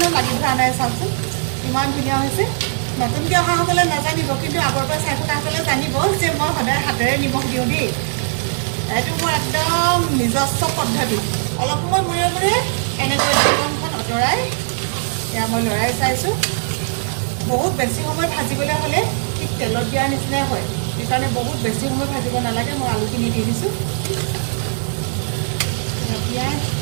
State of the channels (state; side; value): silent; left; digital silence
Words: লাগি ধৰা নাই চাওকচোন ইমান ধুনীয়া হৈছে নতুনকৈ অহাসকলে নাজানিব কিন্তু আগৰ পৰা চাই থকাসকলে জানিব যে মই সদায় হাতেৰে নিমখ দিওঁ দেই এইটো মোৰ একদম নিজস্ব পদ্ধতি অলপ সময় মূৰে মূৰে এনেকৈ ঢাকনখন আঁতৰাই এয়া মই লৰাই চাইছোঁ বহুত বেছি সময় ভাজিবলৈ হ'লে ঠিক তেলত দিয়াৰ নিচিনাই হয় সেইকাৰণে বহুত বেছি সময় ভাজিব নালাগে মই আলুখিনি দি দিছোঁ পিঁয়াজ